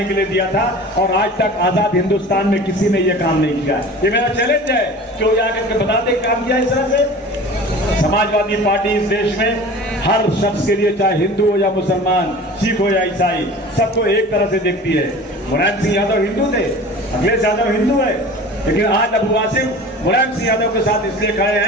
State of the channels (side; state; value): both; normal; correlation 0.39